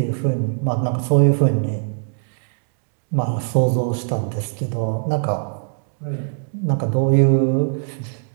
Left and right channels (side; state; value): left; silent; digital silence